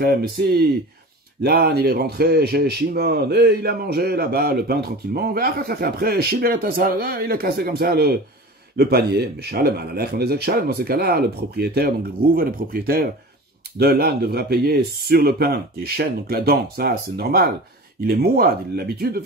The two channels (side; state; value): both; normal; correlation 0.35